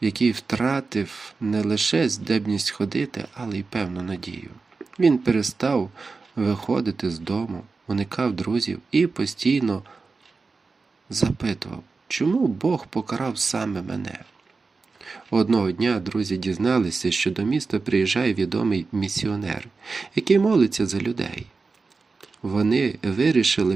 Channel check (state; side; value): quieter; left; 4.2 dB